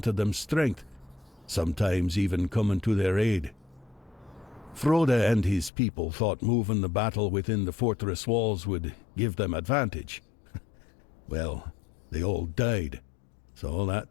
them strength, sometimes even coming to their aid. Frode and his people thought moving the battle within the fortress walls would give them advantage. Well, they all died, so that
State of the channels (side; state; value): right; drops out; at 5.7 s